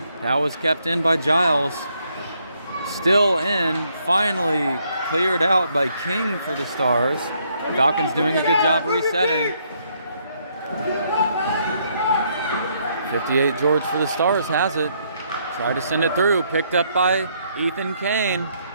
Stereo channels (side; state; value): both; inverted; correlation -0.72